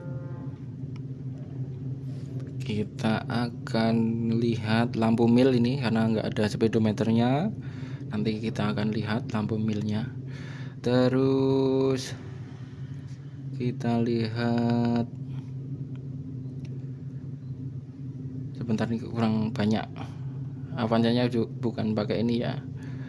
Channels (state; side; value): identical; both; correlation 1.00